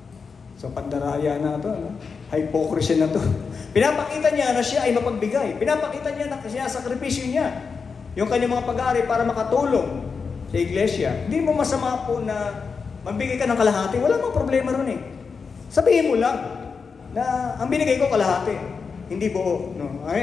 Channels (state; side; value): quieter; right; 5.3 dB